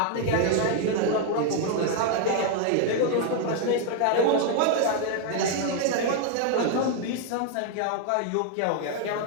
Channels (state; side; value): different; both; correlation 0.00